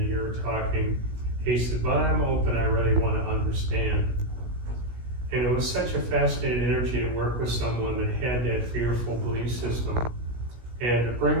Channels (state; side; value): late; left; 17 ms